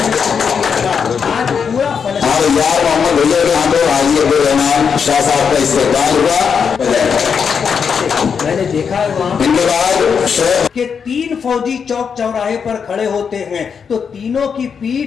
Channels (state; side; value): quieter; right; 6.5 dB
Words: پورا یار محمد حجر کے ہاتھوں حاجی عبدالرحمان شاہ صاحب کا استقبال ہوا. میں نے دیکھا ہے وہاں کہ 3 فوجی چوک چوراہے پر کھڑے ہوتے ہیں تو تینوں کی